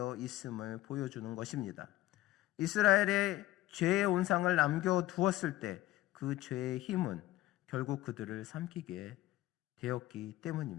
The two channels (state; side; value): quieter; right; 16.0 dB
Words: 있음을 보여주는 것입니다. 이스라엘의 죄의 온상을 남겨두었을 때 그 죄의 힘은 결국 그들을 삼키게 되었기